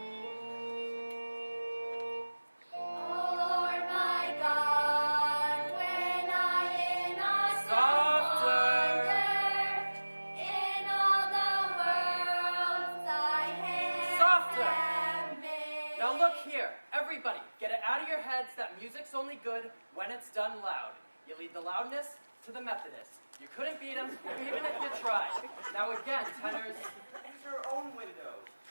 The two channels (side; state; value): both; inverted; correlation -1.00